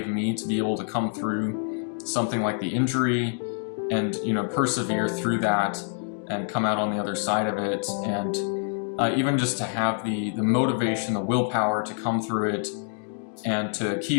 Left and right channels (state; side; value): silent; right; 61 dB below the other